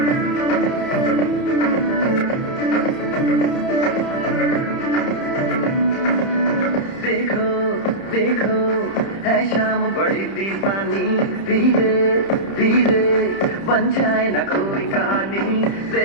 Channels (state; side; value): late; right; 30 ms